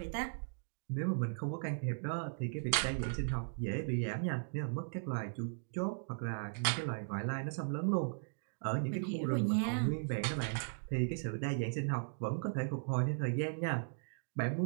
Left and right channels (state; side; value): silent; left; digital silence